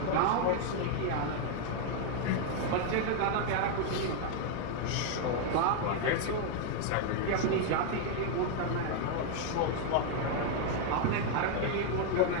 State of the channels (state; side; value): different; both; correlation 0.00